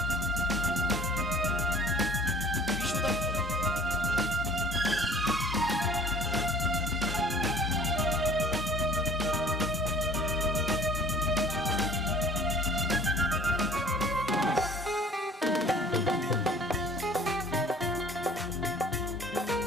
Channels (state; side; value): normal; both; correlation 0.50